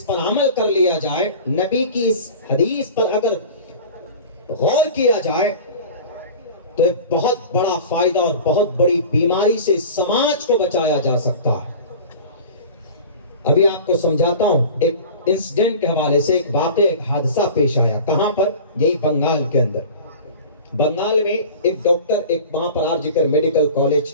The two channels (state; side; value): inverted; both; correlation -0.38